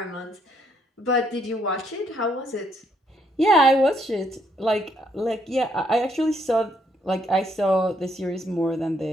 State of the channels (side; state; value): both; normal; correlation 0.72